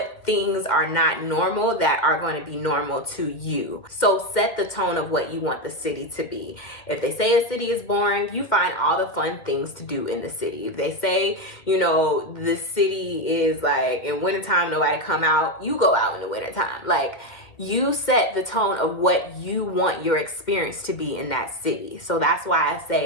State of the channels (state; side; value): late; right; 2.1 ms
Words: things are not normal that are going to be normal to you? So set the tone of what you want the city to be. If they say a city is boring, you find all the fun things to do in the city. If they say, you know, the city is like in wintertime, nobody come out, you go out in the wintertime. Like, you set the tone of what you want your experience to be in that city. So that's why I